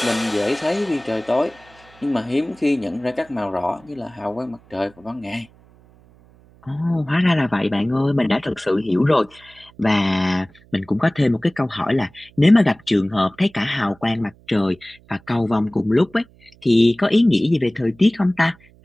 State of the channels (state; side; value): noise; right; hum, 28 dB below the sound